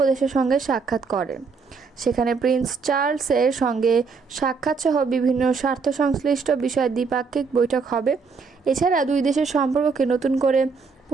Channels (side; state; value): left; quieter; 5.0 dB